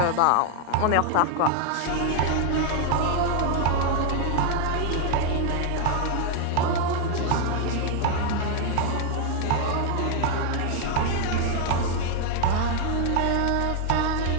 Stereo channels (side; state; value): both; different; correlation 0.00